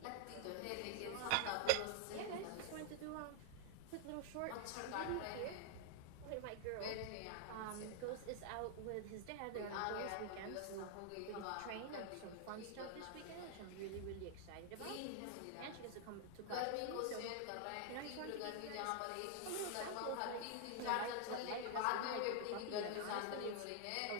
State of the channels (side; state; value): both; different; correlation 0.00